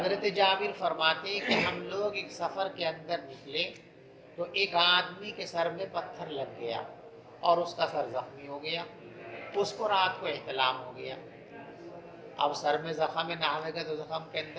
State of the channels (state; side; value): identical; both; correlation 1.00